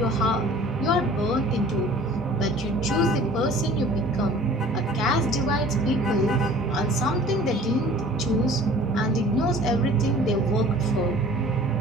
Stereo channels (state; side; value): normal; both; correlation 0.47